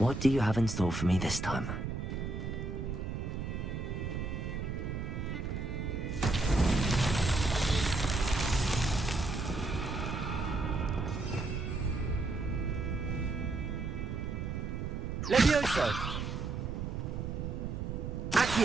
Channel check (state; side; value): noise; right; rumble, 3 dB below the sound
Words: do you have in store for me this time? Levioso!